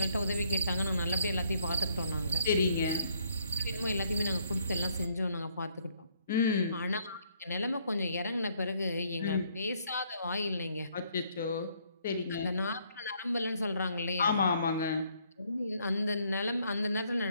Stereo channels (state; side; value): inverted; both; correlation -0.69